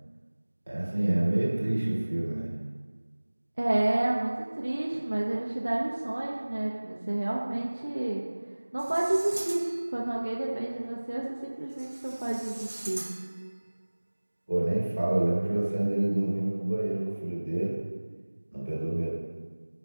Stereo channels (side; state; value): both; inverted; correlation -1.00